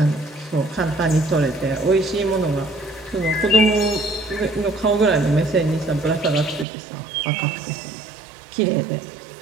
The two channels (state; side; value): drops out; left; at 6.7 s